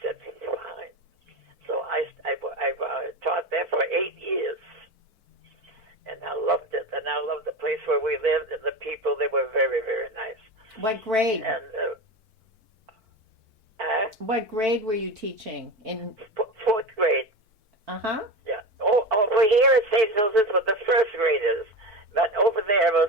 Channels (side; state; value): left; late; 4.5 ms